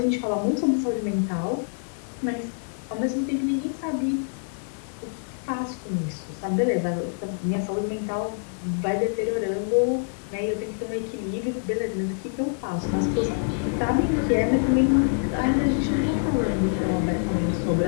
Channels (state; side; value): silent; right; digital silence